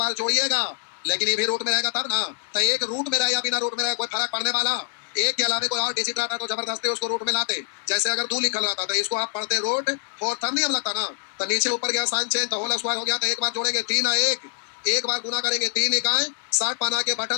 जोड़िएगा, लेकिन ये भी रूट में रहेगा तब ना। तो एक रूट में रहे या बिना रूट में रहे कोई फर्क पड़ने वाला, एक के अलावा कोई और डिजिट रहता तो जबरदस्ती उसको रूट में लाते। जैसे अगर 2 लिखल रहता तो इसको आप पढ़ते रूट 4 तब नियम लगता ना। तो नीचे ऊपर गया साइन चेंज, तो होल स्क्वायर हो गया। तो एक बार जोड़ेंगे 3 और 1, एक बार गुना करेंगे 3 इकाई 60 बना के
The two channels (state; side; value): silent; right; digital silence